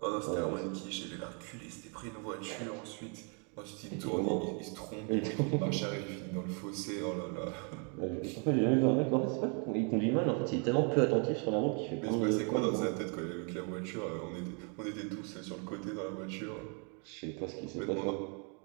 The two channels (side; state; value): left; quieter; 38.0 dB